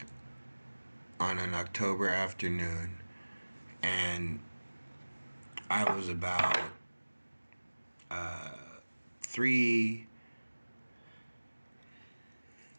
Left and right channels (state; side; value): inverted; both; correlation -1.00